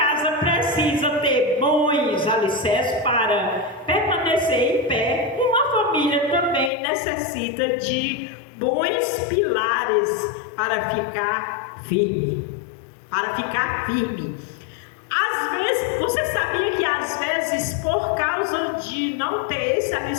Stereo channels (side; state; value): right; drops out; at 6.7 s